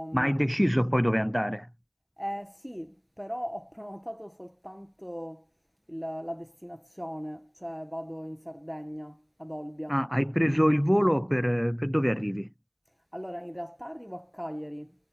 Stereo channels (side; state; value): both; identical; correlation 1.00